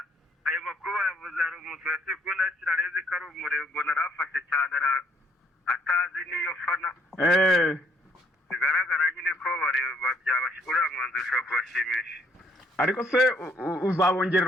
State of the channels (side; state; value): both; normal; correlation 0.66